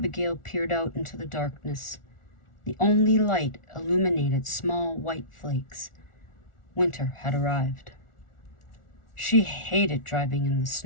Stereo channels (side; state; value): right; late; 1.4 ms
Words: peered out into the darkness. The only light illuminated small white flakes. Winter had arrived. She hated driving in the